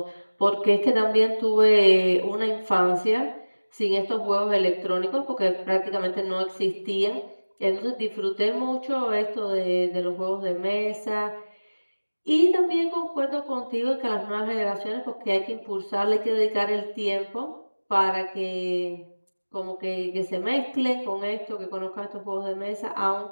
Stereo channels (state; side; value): inverted; both; correlation -1.00